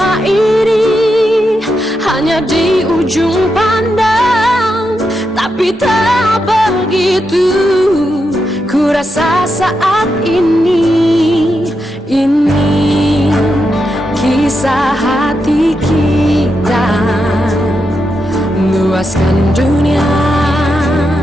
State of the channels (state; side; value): normal; both; correlation 0.85